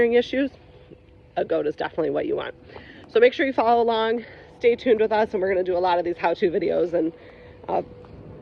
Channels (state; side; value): identical; both; correlation 1.00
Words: issues, a goat is definitely what you want. So make sure you follow along, stay tuned with us, and we're going to do a lot of these how-to videos and